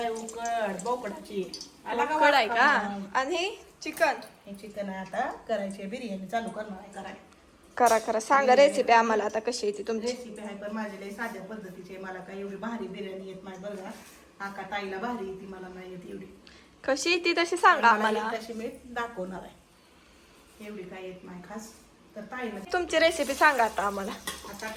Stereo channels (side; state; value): both; identical; correlation 1.00